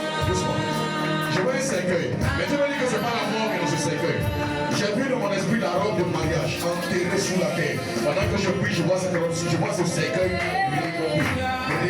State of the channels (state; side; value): identical; both; correlation 1.00